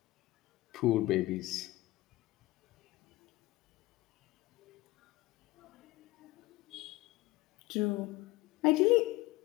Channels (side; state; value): right; quieter; 19.4 dB